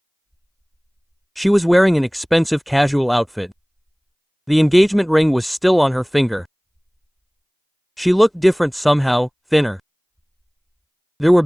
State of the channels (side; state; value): both; identical; correlation 1.00